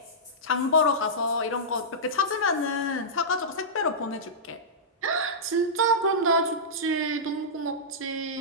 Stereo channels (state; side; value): normal; both; correlation -0.14